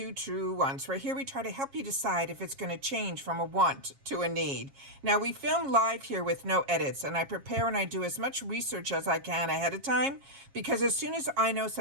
Truewants, where here we try to help you decide if it's going to change from a want to a need. Now we film live here with no edits, and I prepare and I do as much research as I can ahead of time, because as soon as I know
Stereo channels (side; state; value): left; late; 7.3 ms